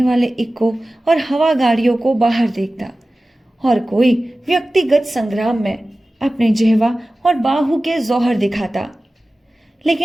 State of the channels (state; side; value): normal; both; correlation 0.96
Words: वाले इक्को और हवा गाड़ियों को बाहर देखता और कोई व्यक्तिगत संग्राम में अपने जेहवा और बाहु के जौहर दिखाता।